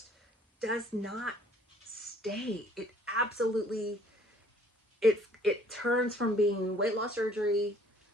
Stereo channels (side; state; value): both; normal; correlation 0.58